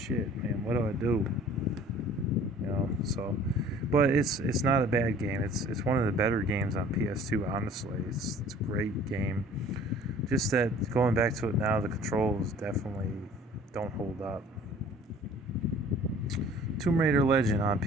man, what do I do? So, but it's not a bad game. It's one of the better games on PS2, honestly. It's a great game. Just that going back to it now, the controls definitely don't hold up. Tomb Raider Legend on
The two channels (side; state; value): both; normal; correlation 0.50